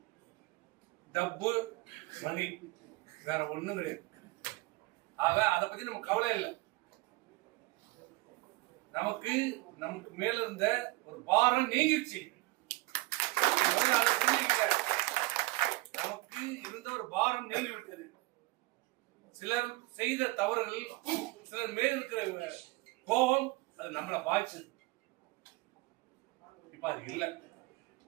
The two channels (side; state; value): left; quieter; 21.7 dB